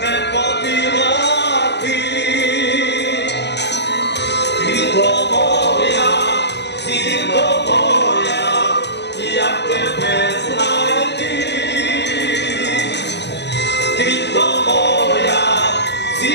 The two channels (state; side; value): late; right; 0.50 ms